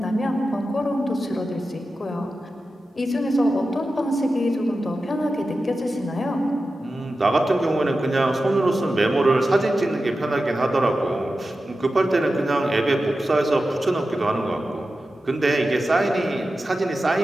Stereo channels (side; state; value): both; normal; correlation 0.93